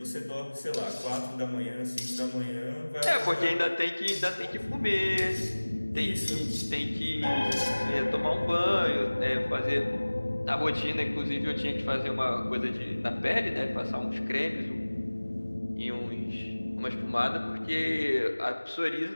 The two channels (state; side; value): inverted; both; correlation -1.00